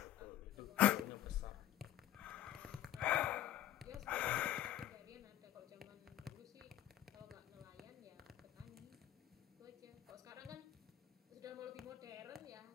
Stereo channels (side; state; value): right; quieter; 13.1 dB